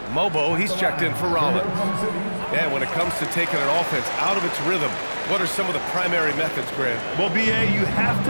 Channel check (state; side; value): inverted; both; correlation -1.00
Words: Mobo, he's checked in for Rollins. And when it comes to taking an offense out of its rhythm, what are some of the primary methods, Grant? Well, B.A., you have